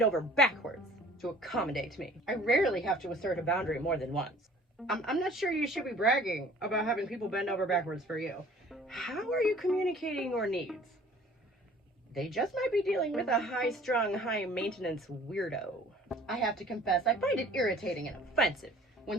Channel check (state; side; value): normal; both; correlation 0.50